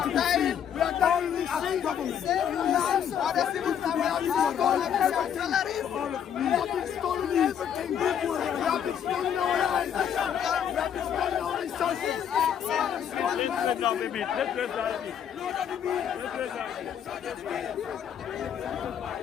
to be free. We are dying as government. We have been stolen everything. We have been stolen our lives. We have been stolen our resources.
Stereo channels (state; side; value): quieter; right; 8.8 dB